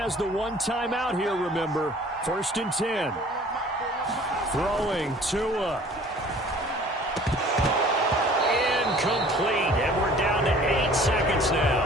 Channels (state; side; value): normal; both; correlation 0.50